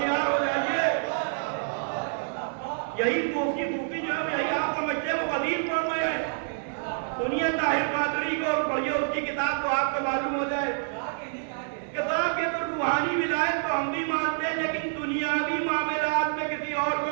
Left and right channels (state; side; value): silent; left; digital silence